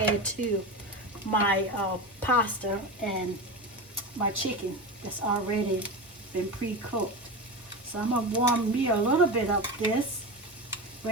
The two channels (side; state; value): both; normal; correlation 0.23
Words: add to my pasta and my chicken that's already been pre-cooked. So I'm going to warm me a little bit of this